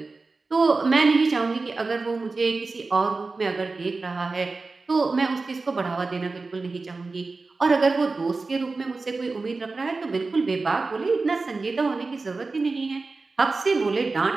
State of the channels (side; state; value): left; quieter; 3.8 dB